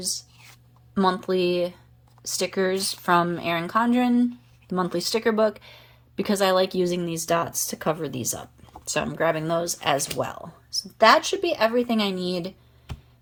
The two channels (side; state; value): both; identical; correlation 1.00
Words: monthly stickers from Erin Condren, the monthly sticker book, because I like using these dots to cover these up. So I'm grabbing those as well. So that should be everything I need